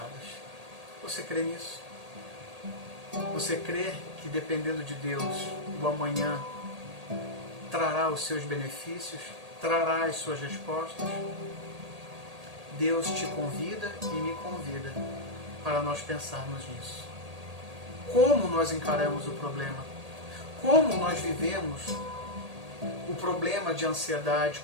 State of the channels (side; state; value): left; late; 1.8 ms